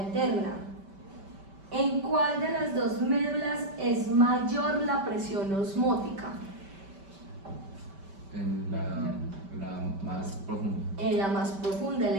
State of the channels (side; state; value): left; late; 5.1 ms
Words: interna. ¿En cuál de las dos médulas es mayor la presión osmótica? En la más profunda. En la más profunda,